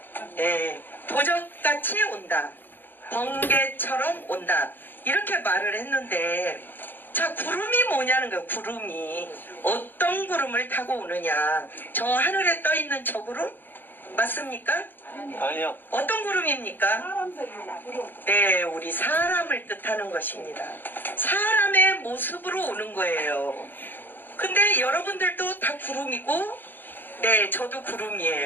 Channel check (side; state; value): right; late; 0.093 ms